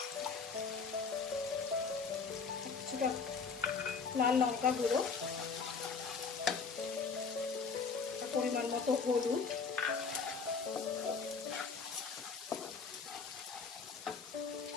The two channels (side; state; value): right; quieter; 5.2 dB